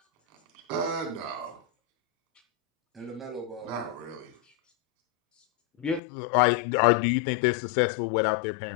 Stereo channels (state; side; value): drops out; right; at 6.0 s